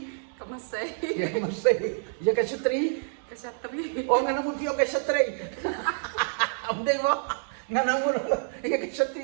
Kemasai. Ya ka masi. Ya ka syatri. Kesatri. Oh ngana muti o ka syatri. Amdeng mo. Ngana mo. Ya ka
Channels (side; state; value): left; silent; digital silence